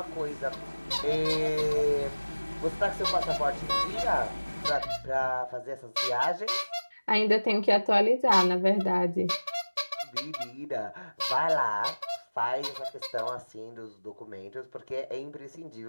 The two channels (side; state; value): both; inverted; correlation -1.00